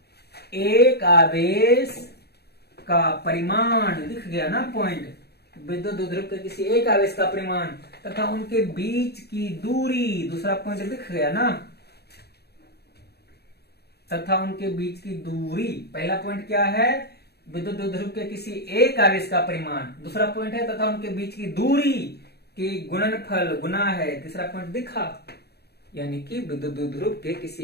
एक आवेश का परिमाण, दिख गया ना पॉइंट, विद्युत द्विध्रुव के किसी एक आवेश का परिमाण तथा उनके बीच की दूरी, दूसरा पॉइंट दिख गया ना, तथा उनके बीच की दूरी। पहला पॉइंट क्या है, विद्युत द्विध्रुव के किसी एक आवेश का परिमाण, दूसरा पॉइंट है तथा उनके बीच की दूरी के गुणनफल, गुना है, तीसरा पॉइंट दिखा, यानी कि विद्युत द्विध्रुव के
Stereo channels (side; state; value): right; late; 0.47 ms